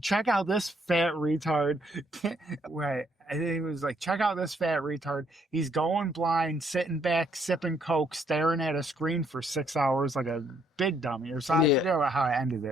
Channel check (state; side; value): normal; both; correlation 0.69